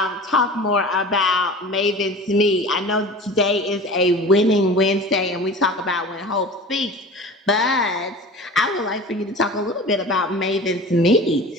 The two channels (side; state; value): both; normal; correlation 0.37